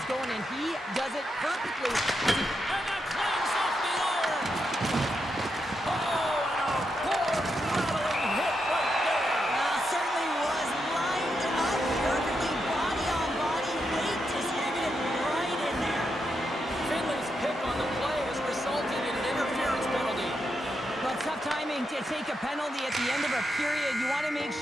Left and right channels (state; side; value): normal; both; correlation 0.84